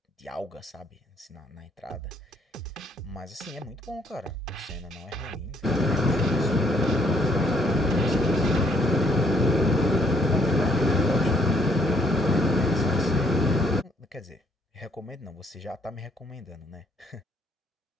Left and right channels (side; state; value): both; normal; correlation 0.67